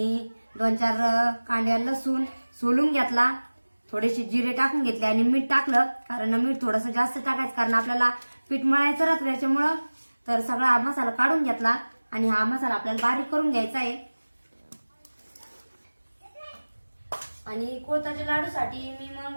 2-4 कांड्या लसूण सोलून घेतला. थोडेसे जिरे टाकून घेतले आणि मीठ टाकलं, कारण मीठ थोडंसं जास्त टाकायचं कारण आपल्याला पीठ मळायचं राहतं त्याच्यामुळं. तर सगळा हा मसाला काढून घेतला आणि हा मसाला आपल्याला बारीक करून घ्यायचा आहे. आणि कुळथाच्या लाडूसाठी मी मग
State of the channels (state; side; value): inverted; both; correlation -1.00